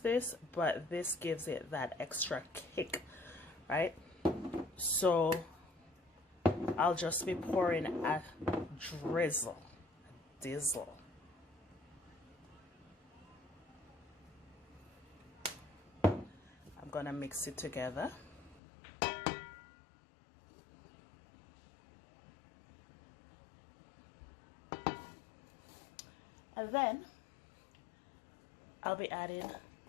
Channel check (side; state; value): right; drops out; at 18.6 s